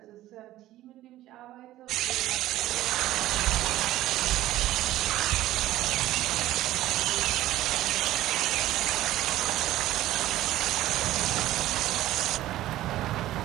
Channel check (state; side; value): quieter; left; 14.8 dB